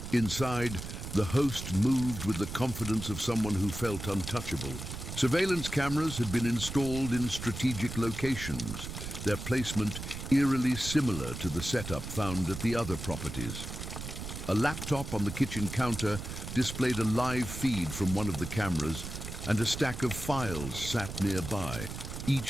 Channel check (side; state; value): right; noise; rumble, 8 dB below the sound